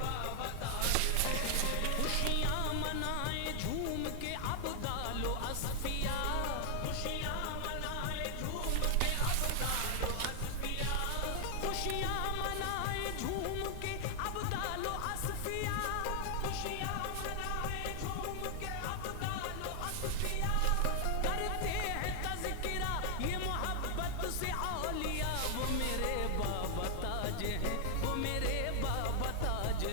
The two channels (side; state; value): both; different; correlation 0.00